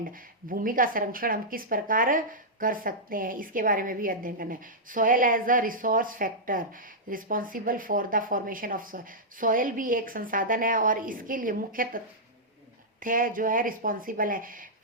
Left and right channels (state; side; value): normal; both; correlation -0.10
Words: भूमि का संरक्षण हम किस प्रकार कर सकते हैं, इसके बारे में भी अध्ययन करना है। Soil as a resource factor responsible for the formation of soil. Soil भी एक संसाधन है और इसके लिए मुख्य तथ्य जो है रिस्पॉन्सिबल है